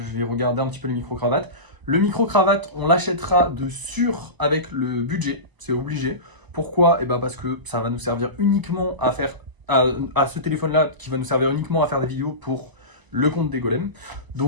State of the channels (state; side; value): late; left; 1.0 ms